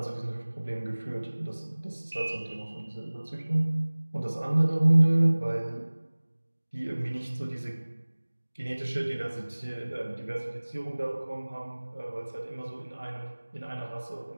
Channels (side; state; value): both; inverted; correlation -1.00